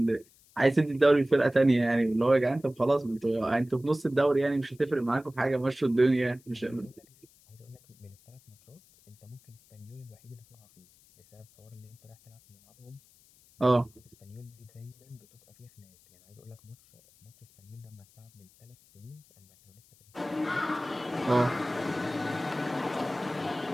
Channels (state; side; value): noise; left; hiss, 29 dB below the sound